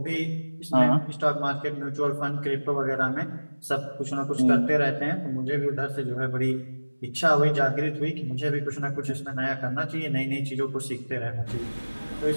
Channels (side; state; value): both; inverted; correlation -1.00